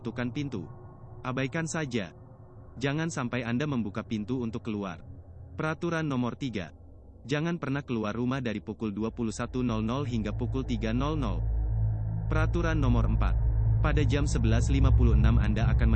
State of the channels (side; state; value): both; identical; correlation 1.00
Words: pintu, abaikan saja. Jangan sampai Anda membuka pintu untuk keluar. Peraturan nomor 3. Jangan pernah keluar rumah dari pukul 21.00 hingga pukul 3.00. Peraturan nomor 4. Pada jam 11.56 Anda akan